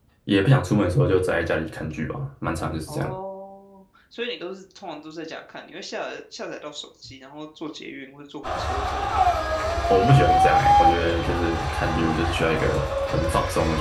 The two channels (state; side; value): identical; both; correlation 1.00